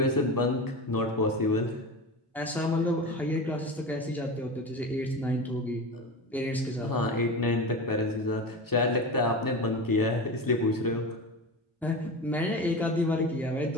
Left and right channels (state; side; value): normal; both; correlation 0.26